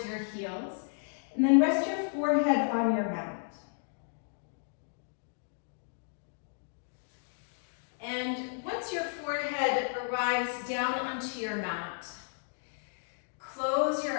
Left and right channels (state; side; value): silent; right; digital silence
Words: your heels. And then rest your forehead on your mat. And once your forehead arrives down onto your mat, close